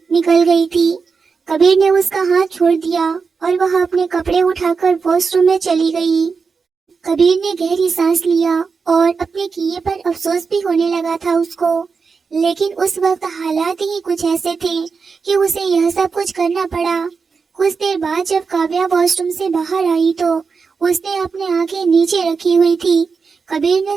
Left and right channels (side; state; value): left; quieter; 5.1 dB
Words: निकल गई थी। कबीर ने उसका हाथ छोड़ दिया और वह अपने कपड़े उठाकर वॉशरूम में चली गई। कबीर ने गहरी सांस लिया और अपने किए पर अफसोस भी होने लगा था उसको, लेकिन उस वक्त हालात ही कुछ ऐसे थे कि उसे यह सब कुछ करना पड़ा। कुछ देर बाद जब काव्या वॉशरूम से बाहर आई तो उसने अपने आंखें नीचे रखी हुई थी। कबीर ने